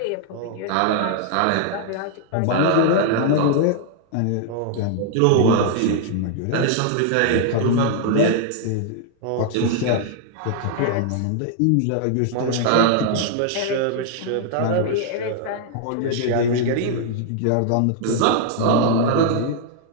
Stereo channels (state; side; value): different; both; correlation 0.00